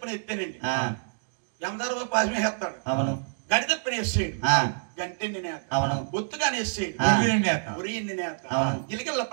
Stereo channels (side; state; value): left; silent; digital silence